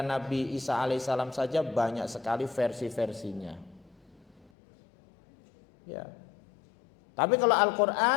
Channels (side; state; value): right; drops out; at 4.5 s